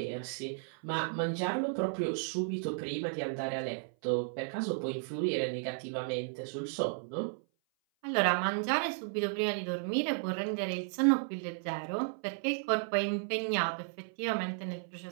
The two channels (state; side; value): silent; left; 55 dB below the other